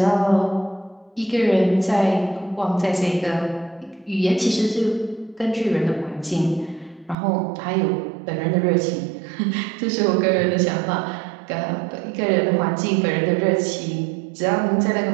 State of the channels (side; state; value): left; drops out; at 7.2 s